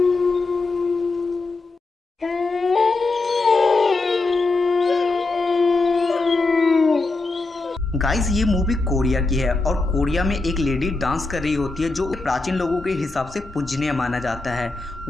गाइस, ये मूवी कोरिया की है और कोरिया में एक लेडी डांस कर रही होती है जो प्राचीन लोगों के हिसाब से पूजनीय माना जाता है।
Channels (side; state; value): right; quieter; 3.4 dB